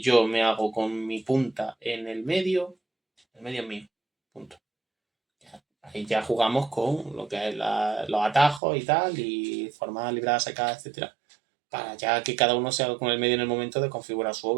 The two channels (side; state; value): left; drops out; at 8.6 s